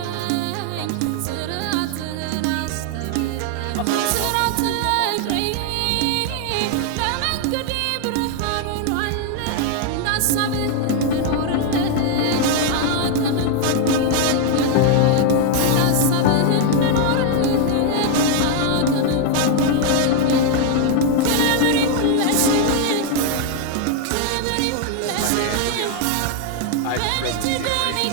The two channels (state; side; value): different; both; correlation 0.00